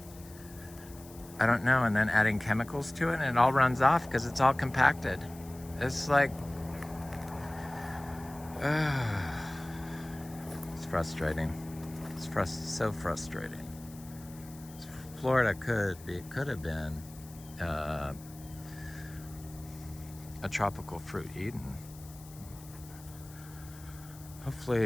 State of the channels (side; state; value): left; noise; hiss, 20 dB below the sound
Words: I don't know. And then adding chemicals to it and it all runs off because it's all compacted. It's like, it's frustrating. It's so frustrating. Florida could have been a tropical fruit Eden.